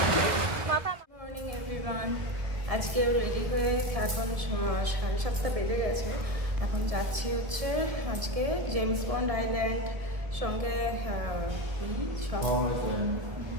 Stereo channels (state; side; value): late; left; 1.5 ms